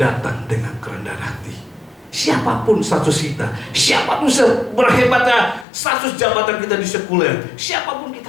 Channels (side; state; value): right; drops out; at 5.7 s